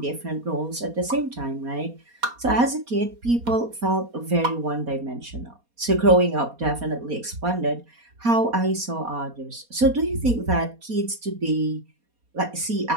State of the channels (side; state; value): left; late; 4.2 ms